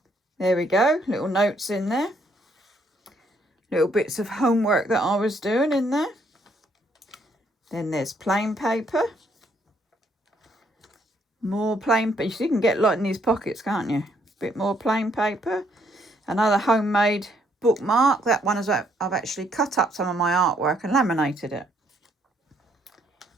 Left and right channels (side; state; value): both; normal; correlation 0.70